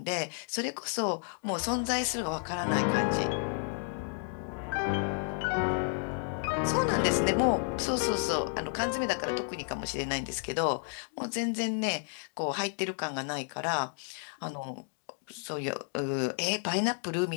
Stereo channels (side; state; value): right; silent; 57 dB below the other